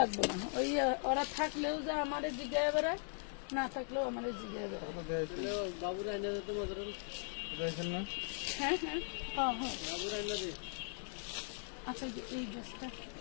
লাগবে না। ওই ওরা থাকলেও যা আমাদের জিজ্ঞাসা বেড়ায়, না থাকলেও আমাদের জিজ্ঞাসা বেড়ায়। হ্যাঁ হ্যাঁ হ্যাঁ হ্যাঁ, আচ্ছা এই ড্রেসটা,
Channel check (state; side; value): silent; right; 52 dB below the other